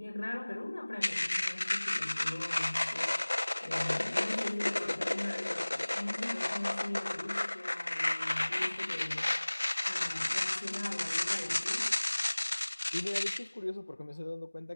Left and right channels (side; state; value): both; inverted; correlation -1.00